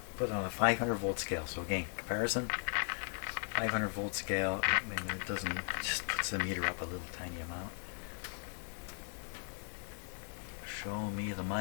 put it on a 500 volt scale. So again, comparison, 500 volt scale. I mean, it doesn't, it just puts the meter up a little tiny amount. Show me the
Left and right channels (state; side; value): silent; right; 53 dB below the other